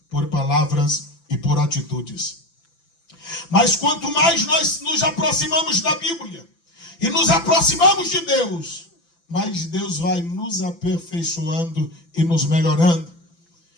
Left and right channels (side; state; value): right; late; 5.9 ms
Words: por palavras e por atitudes. Mas quanto mais nós nos aproximamos da Bíblia e nos aproximamos de Deus, mais Deus vai nos aperfeiçoando e nos melhorando.